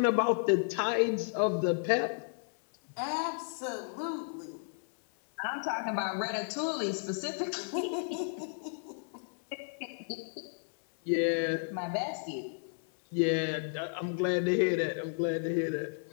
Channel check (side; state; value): right; silent; 56 dB below the other